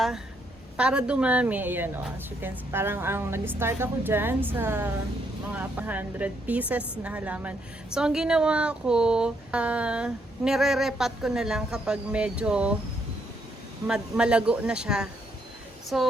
para dumami, ayan o, as you can see, parang ang nag-start ako dyan sa mga 100 pieces na halaman. So, ang ginawa ko, nire-repat ko na lang kapag medyo malago na siya.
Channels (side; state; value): both; normal; correlation 0.74